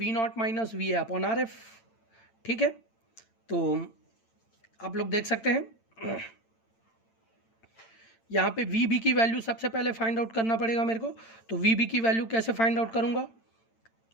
not minus V A upon RF, ठीक है। तो आप लोग देख सकते हैं यहाँ पे वी बी की वैल्यू सबसे पहले फाइंड आउट करना पड़ेगा मेरे को। तो वी बी की वैल्यू कैसे फाइंड आउट करूंगा,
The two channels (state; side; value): late; right; 8.9 ms